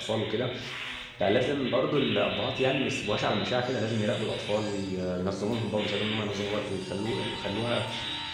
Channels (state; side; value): identical; both; correlation 1.00